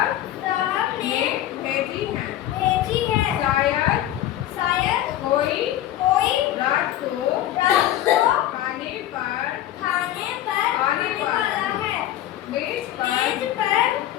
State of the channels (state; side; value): quieter; right; 13.0 dB